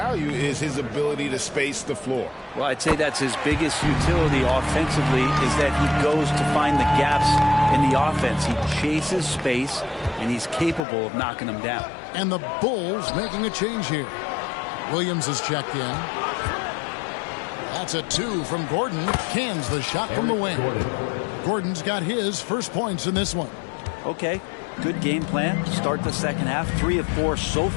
is his ability to space the floor. Well, I'd say that's his biggest utility offensively is that he goes to find the gaps in the offense. He chases space, and he's capable of knocking them down. And the Bulls making a change here. Williams is checked in. That's a 2 from Gordon. Cans the shot from the wing. Gordon's got his first points in this one. Okay, good game plan. Start the second half. 3 of 4 so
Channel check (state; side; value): drops out; right; at 10.9 s